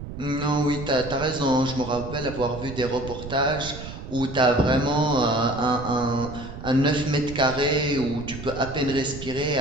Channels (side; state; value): right; noise; rumble, 11 dB below the sound